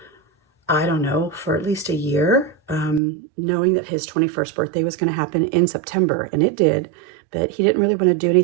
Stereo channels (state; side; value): drops out; left; at 3.0 s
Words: I don't know, for at least a year, knowing that his 21st birthday was going to happen in September. And it did. But he didn't really want to do